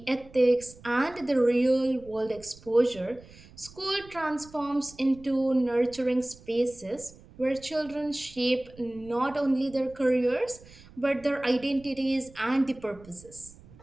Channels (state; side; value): noise; right; rumble, 22 dB below the sound